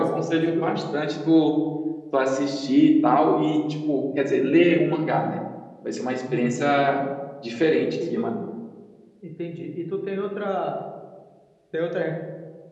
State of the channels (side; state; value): both; identical; correlation 1.00